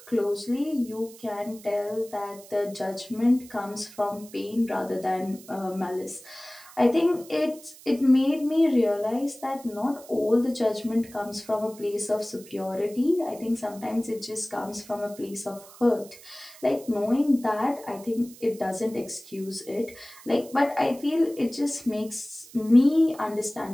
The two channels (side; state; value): right; noise; hiss, 20 dB below the sound